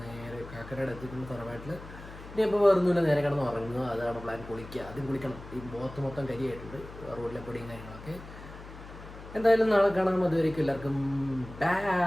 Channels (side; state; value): left; noise; hum, 15 dB below the sound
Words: നേരെ കാക്കരയുടെ എത്തിക്കുന്ന തറവാട്ടിൽ. ഇനി ഇപ്പോൾ വേറൊന്നുമില്ല, നേരെ കിടന്ന് ഉറങ്ങുക. അതാണ് പ്ലാൻ. കുളിക്കുക, ആദ്യം കുളിക്കണം. ഈ മുഖത്ത് മൊത്തം കരിയായിട്ടുണ്ട്, റോഡിലെ പൊടിയും കാര്യങ്ങളൊക്കെ. എന്തായാലും നാളെ കാണാം. അതുവരേക്കും എല്ലാവർക്കും